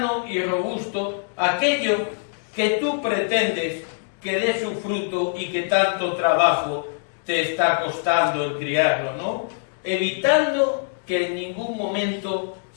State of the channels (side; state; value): right; silent; digital silence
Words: y robusto aquello que tú pretendes que dé su fruto y que tanto trabajo te está costando el criarlo, ¿no? Evitando que en ningún momento